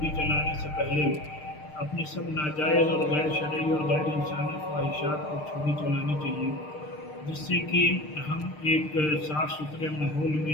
چلانے سے پہلے اپنے سب ناجائز اور غیر شرعی اور غیر انسانی خواہشات پر چھری چلانی چاہیے، جس سے کہ ہم ایک صاف ستھرے ماحول میں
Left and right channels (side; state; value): right; late; 6.6 ms